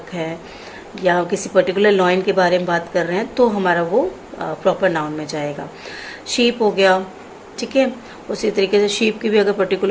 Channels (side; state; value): both; identical; correlation 1.00